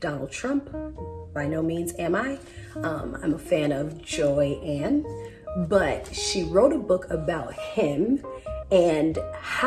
Trump. By no means am I. I'm a fan of Joy Ann, but she wrote a book about him and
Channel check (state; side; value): identical; both; correlation 1.00